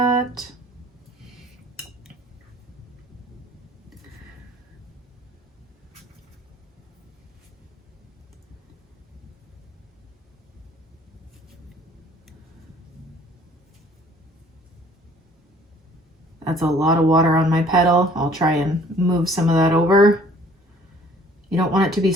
That's a lot of water on my petal. I'll try and move some of that over. You don't want it to be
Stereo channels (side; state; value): both; normal; correlation 0.55